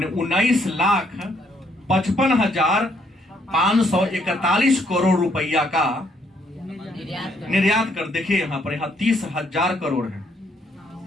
19,55,541 करोड़ रुपया का निर्यात कर। देखिए यहां पर, यहां 30,000 करोड़ है,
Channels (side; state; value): both; normal; correlation 0.70